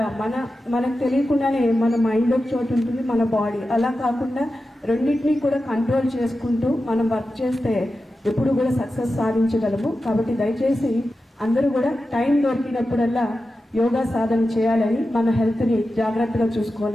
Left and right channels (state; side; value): normal; both; correlation 0.92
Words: మనకు తెలియకుండానే మన మైండ్ ఒక చోటు ఉంటుంది, మన బాడీ అలా కాకుండా రెండింటినీ కూడా కంట్రోల్ చేసుకుంటూ మనం వర్క్ చేస్తే ఎప్పుడు కూడా సక్సెస్ సాధించగలము. కాబట్టి దయచేసి అందరూ కూడా టైం దొరికినప్పుడల్లా యోగా సాధన చేయాలని, మన హెల్త్ని జాగ్రత్తగా